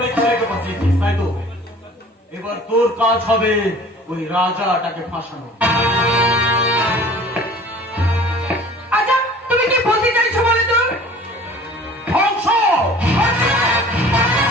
ছেলেকে বাঁচিয়েছিস, তাই তো? এবার তোর কাজ হবে ওই রাজাটাকে ফাঁসানো। আচ্ছা তুমি কি বলতে চাইছো বলে তো? ধ্বংস!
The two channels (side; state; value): both; normal; correlation 0.47